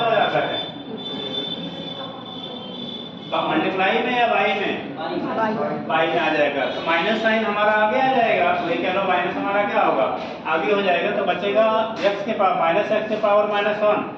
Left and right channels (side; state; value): both; identical; correlation 1.00